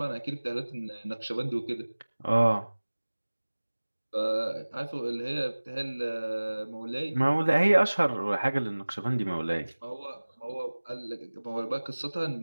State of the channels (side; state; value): both; inverted; correlation -1.00